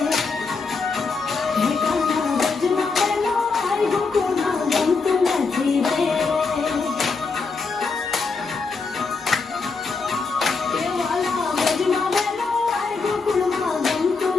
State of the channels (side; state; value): right; quieter; 4.4 dB